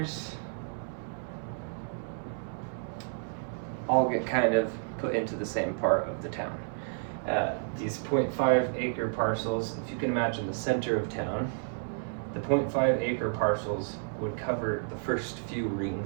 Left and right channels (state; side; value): silent; left; digital silence